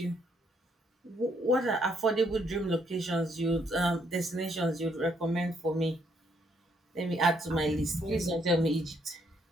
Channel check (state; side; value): normal; both; correlation 0.71